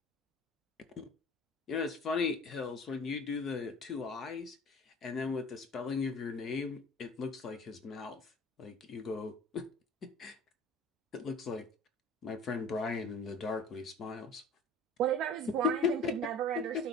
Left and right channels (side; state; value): both; normal; correlation 0.43